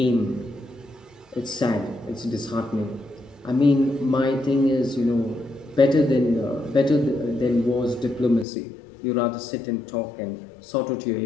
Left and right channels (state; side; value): drops out; right; at 8.5 s